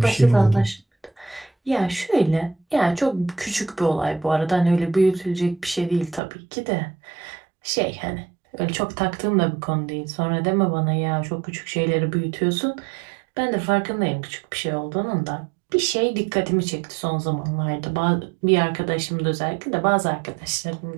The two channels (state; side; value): drops out; left; at 6.2 s